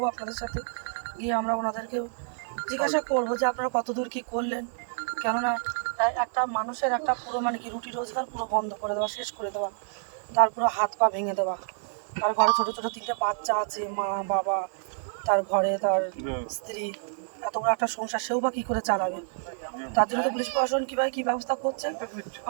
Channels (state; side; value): silent; left; 59 dB below the other